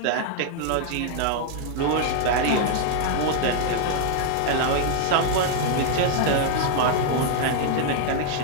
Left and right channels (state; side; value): different; both; correlation 0.00